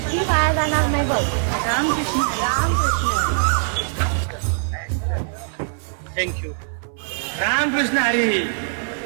वाया जाणार नाही बघ. रामकृष्ण रामकृष्ण. थँक्यू. रामकृष्ण हरी.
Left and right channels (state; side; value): silent; left; 59 dB below the other